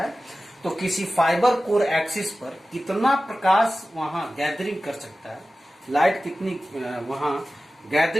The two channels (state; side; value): normal; both; correlation 0.95